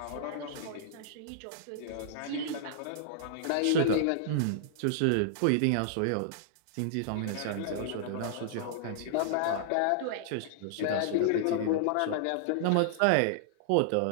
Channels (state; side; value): different; both; correlation -0.01